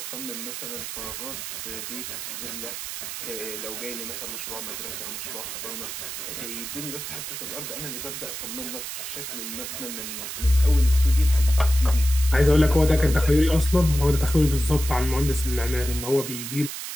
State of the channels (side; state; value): right; noise; hiss, 7 dB below the sound